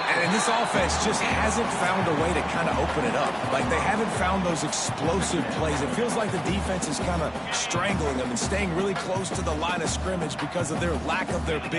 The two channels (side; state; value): both; identical; correlation 1.00